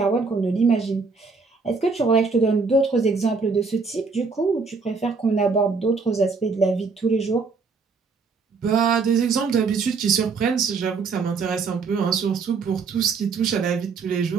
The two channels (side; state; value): left; quieter; 4.7 dB